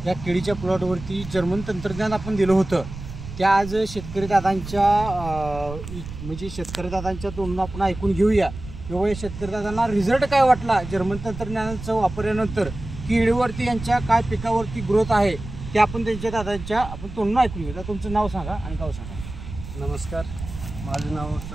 या केळीच्या प्लॉटवरती जर्मन तंत्रज्ञान आपण दिलं होतं. त्या आज शेतकरी दादांच्या म्हणजे शेतकरी दादांच्या तोंडून आपण ऐकून घेऊया किंवा या शेतकरी दादांना रिझल्ट काय वाटला जर्मन तंत्रज्ञानाचा वापरल्यानंतर, केळीवरती यांच्या काय पिकावरती ग्रोथ आहे ते आपण त्यांच्या दादांच्या आपण तोंडून ऐकून घेऊया. तुमचं नाव सांगा आणि गाव सांगा. नमस्कार, माझं नाव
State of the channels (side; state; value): right; noise; rumble, 11 dB below the sound